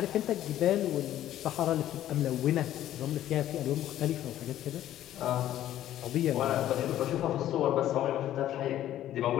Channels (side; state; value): right; quieter; 12.6 dB